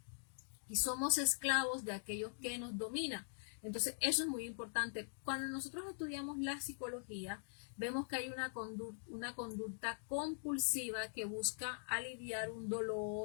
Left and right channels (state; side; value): silent; right; digital silence